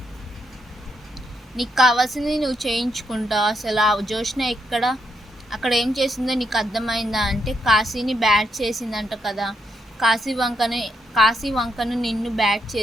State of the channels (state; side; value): normal; both; correlation 0.79